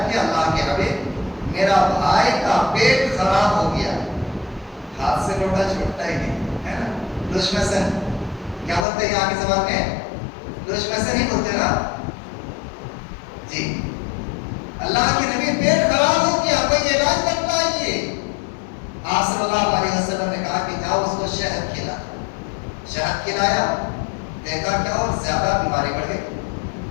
کی، اللہ کے حبیب میرا بھائی کا پیٹ خراب ہو گیا، ہاتھ سے لوٹا چھوٹتا ہی نہیں ہے نا، دشمسن کیا بولتے ہیں یہاں کی زبان میں؟ دشمسن ہی بولتے نا جی۔ اللہ کے نبی پیٹ خراب ہو گیا، کوئی علاج بتلائیے۔ آپ صلی اللہ علیہ وسلم نے کہا کہ جاؤ اس کو شہد کھلا۔ شہد کھلایا، دیکھا کیا اور زیادہ بیماری بڑھ گئی۔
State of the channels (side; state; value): right; drops out; at 8.8 s